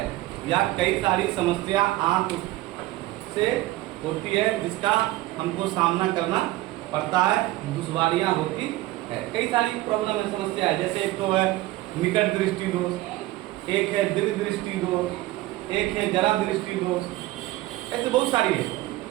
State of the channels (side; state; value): left; quieter; 17.7 dB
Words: या कई सारी समस्या आंख से होती है जिसका हमको सामना करना पड़ता है, दुश्वारियां होती है। कई सारी प्रॉब्लम है, समस्या है। जैसे एक तो है निकट दृष्टि दोष, एक है दीर्घ दृष्टि दोष, एक है जरा दृष्टि दोष, ऐसे बहुत सारी है।